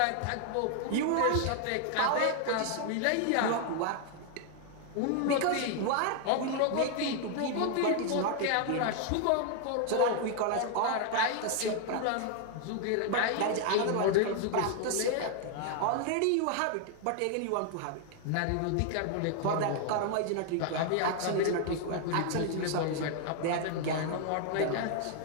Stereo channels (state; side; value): different; both; correlation 0.00